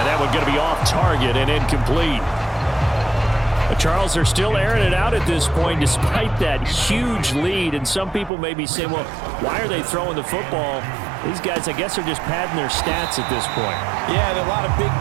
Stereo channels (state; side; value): drops out; left; at 8.3 s